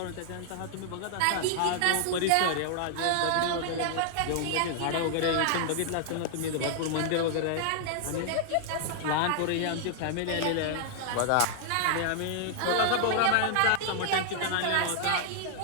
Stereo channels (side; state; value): both; different; correlation -0.01